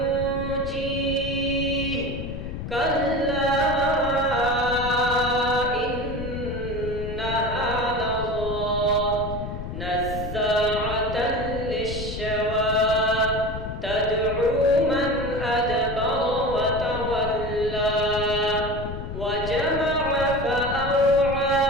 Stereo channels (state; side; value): noise; left; rumble, 7 dB below the sound